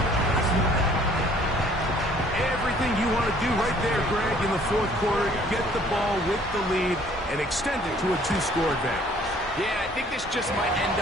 Everything the lead and extend it to a 2-score advantage. Yeah, I think this just might end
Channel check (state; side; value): normal; both; correlation 0.57